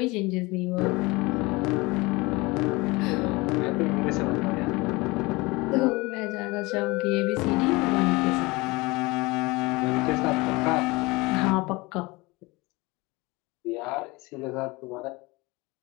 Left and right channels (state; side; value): quieter; right; 23.5 dB